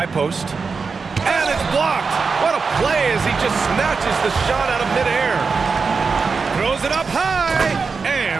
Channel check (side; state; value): left; quieter; 4.9 dB